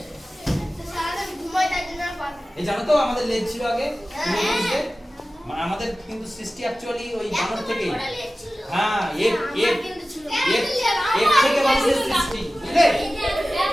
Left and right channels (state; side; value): normal; both; correlation 0.96